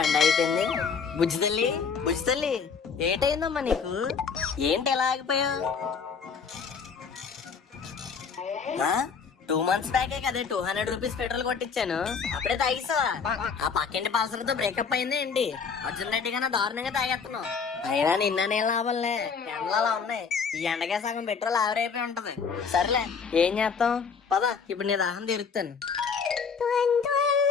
అయిపోయింది? బుజ్జి తల్లి ఏంటైందమ్మా నీకు? ఏంటి ఎలా ఆగిపోయావు? 2 months బ్యాకే కదా 200 రూపీస్ పెట్రోల్ కొట్టించాను, అప్పుడే తాగిస్తావా? ఆ పక్కింటి పాలసలతో బ్రేకప్ అయింది ఏంటి? అర్జున్ రెడ్డి కన్నా దారుణంగా తాగేస్తున్నావు. అయినా నిన్న నేను లాభంలే, ఎండలు అలా ఉన్నాయి. ఈ ఎండగా సగం పెట్రోల్ ఆవిరైపోయి ఉంటది. సర్లే ఏం చేస్తాం, పద ఇప్పుడు నీ దాహం తీరుస్తాను.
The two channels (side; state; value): right; quieter; 5.9 dB